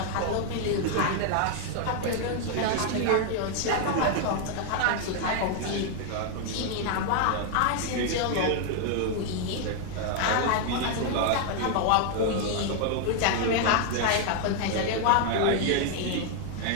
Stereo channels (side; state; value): both; different; correlation 0.00